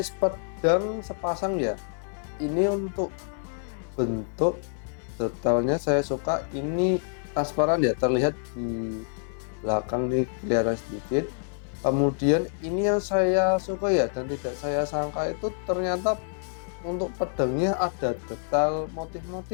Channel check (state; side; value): silent; right; 60 dB below the other